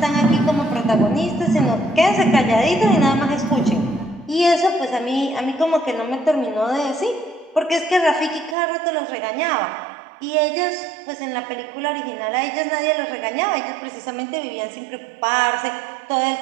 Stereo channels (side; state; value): left; drops out; at 8.6 s